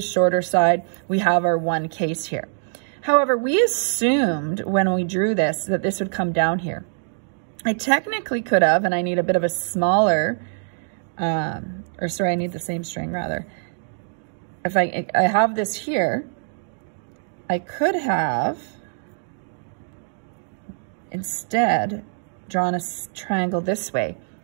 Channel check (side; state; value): left; silent; digital silence